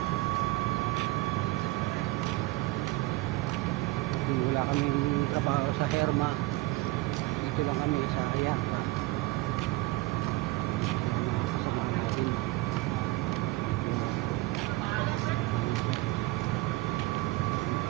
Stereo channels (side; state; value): left; quieter; 20.3 dB